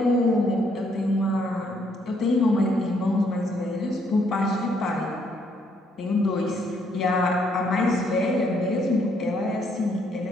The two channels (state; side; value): normal; both; correlation 0.70